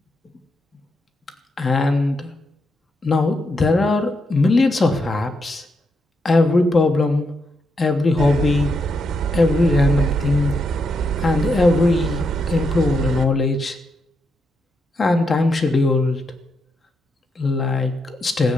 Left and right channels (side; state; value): both; normal; correlation 0.81